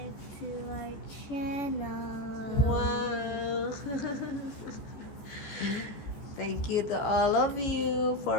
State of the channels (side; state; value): right; late; 14 ms